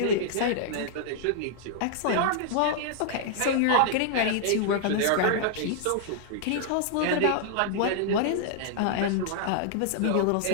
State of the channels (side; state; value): both; different; correlation -0.01